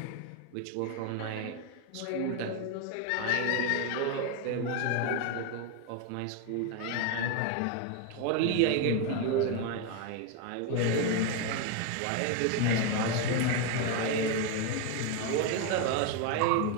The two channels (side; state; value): both; different; correlation 0.01